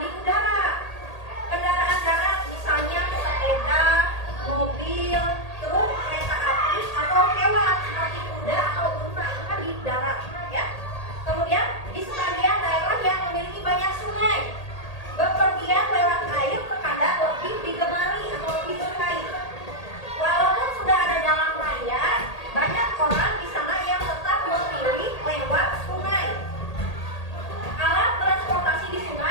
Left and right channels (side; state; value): right; late; 1.8 ms